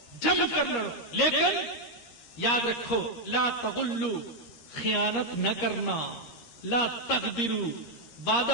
جم کر لڑو، لیکن یاد رکھو لا تغلوا، خیانت نہ کرنا، لا تغدروا،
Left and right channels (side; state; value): right; late; 13 ms